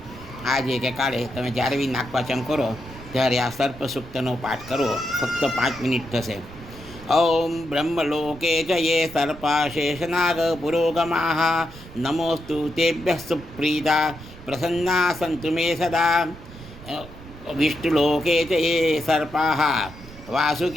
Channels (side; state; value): right; noise; rumble, 17 dB below the sound